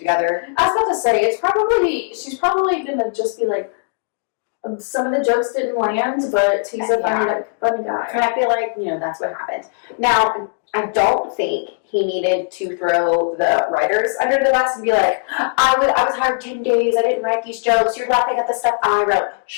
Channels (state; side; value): silent; right; digital silence